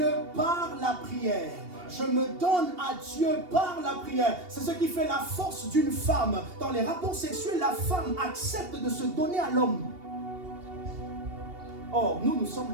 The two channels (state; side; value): late; left; 2.8 ms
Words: par la prière. Je me donne à Dieu par la prière. C'est ce qui fait la force d'une femme. Dans les rapports sexuels, la femme accepte de se donner à l'homme. Or, nous sommes